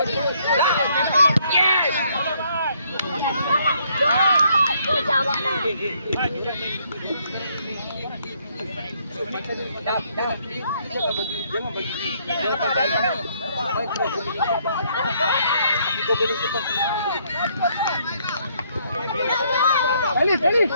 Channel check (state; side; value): inverted; both; correlation -0.68